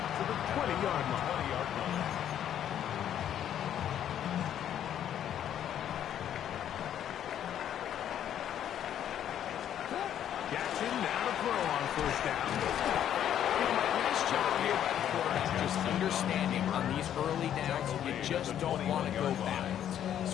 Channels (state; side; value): quieter; right; 10.3 dB